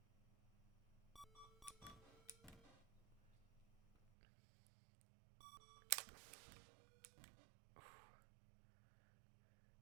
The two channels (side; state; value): left; drops out; at 4.1 s